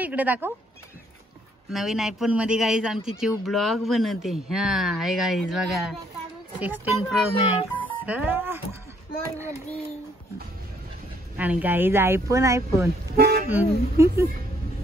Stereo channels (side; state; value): both; normal; correlation 0.67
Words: दाखव नवीन आयफोन मध्ये गाईज आमची चिव ब्लॉग बनवते. हा आहे गाईज बघा 16 Pro Max. आणि गाईज आयफोन